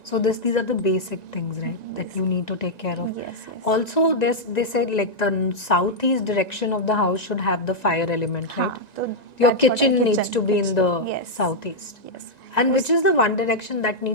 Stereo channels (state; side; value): late; right; 1.9 ms